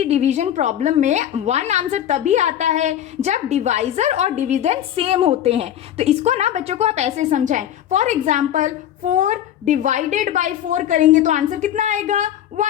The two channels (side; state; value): right; quieter; 10.9 dB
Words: डिवीजन प्रॉब्लम में 1 आंसर तभी आता है जब डिवाइजर और डिविडेंड सेम होते हैं। तो इसको ना बच्चों को आप ऐसे समझाएं। फॉर एग्जाम्पल 4 डिवाइडेड बाई 4 करेंगे तो आंसर कितना आएगा